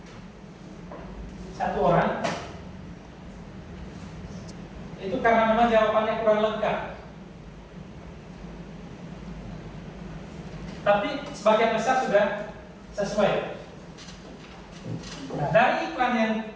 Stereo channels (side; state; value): both; identical; correlation 1.00